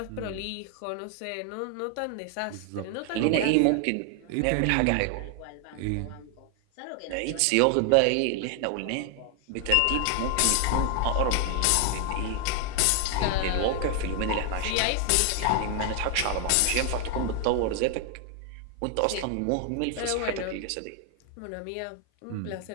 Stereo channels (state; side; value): different; both; correlation 0.00